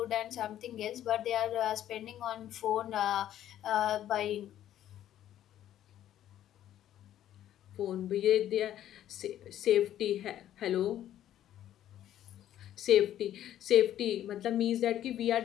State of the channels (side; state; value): right; quieter; 11.8 dB